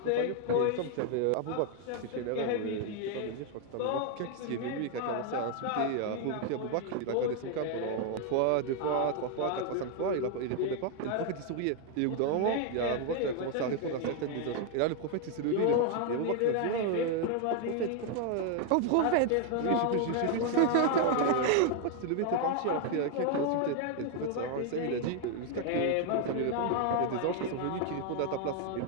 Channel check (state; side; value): different; both; correlation 0.00